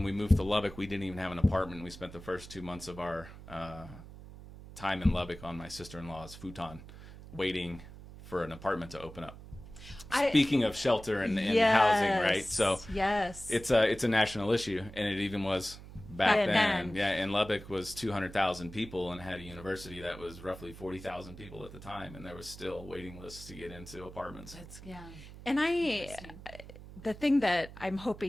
we moved to Lubbock, we didn't even have an apartment. We spent the first 2 months of our time in Lubbock on my sister-in-law's futon, waiting for an apartment to open up. Speaking of shelter and housing, right? So yes, it's a national issue, and it even was back then. Yeah, and Lubbock was 200,000 people and had a university that was roughly 40,000 people at the time, and there was still waiting lists to get into apartments. And the thing that I'm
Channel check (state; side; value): noise; right; hum, 16 dB below the sound